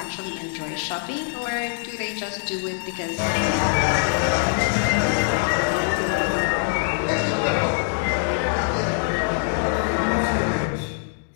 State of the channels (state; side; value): silent; right; 63 dB below the other